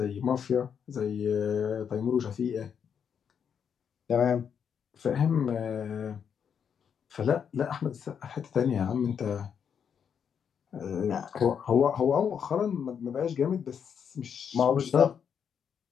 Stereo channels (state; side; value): quieter; right; 7.5 dB